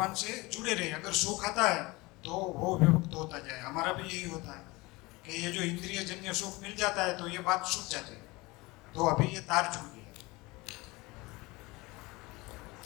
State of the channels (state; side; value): quieter; right; 22.9 dB